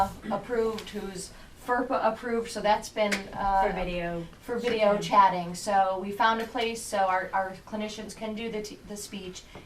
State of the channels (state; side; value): identical; both; correlation 1.00